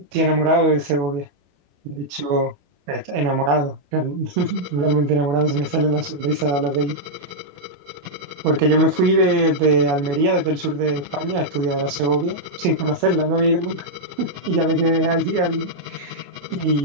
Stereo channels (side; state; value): left; late; 28 ms